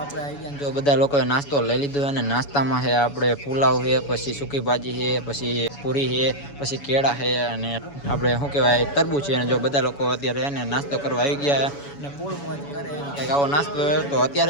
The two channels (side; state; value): right; late; 7.1 ms